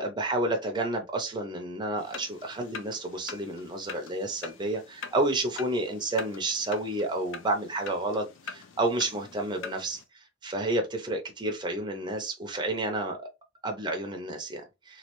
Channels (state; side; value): normal; both; correlation 0.14